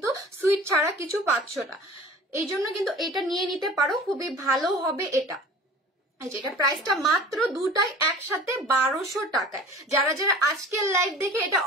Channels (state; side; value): normal; both; correlation 0.42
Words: সুইট ছাড়া কিছু পাচ্ছ না, এই জন্য কিন্তু এটা নিয়ে নিতে পারো, খুবই ভালো হবে এটা। যেটা প্রাইসটা মাত্র দুটাই একসাথে 1200 টাকায়। যারা যারা আজকের লাইভ দেখে এটা